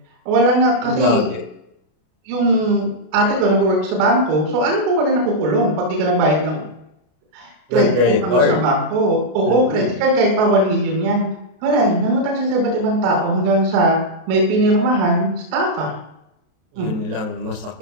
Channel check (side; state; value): left; late; 32 ms